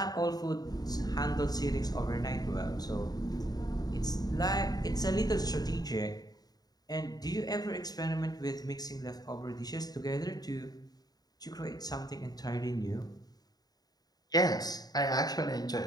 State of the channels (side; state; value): right; late; 0.19 ms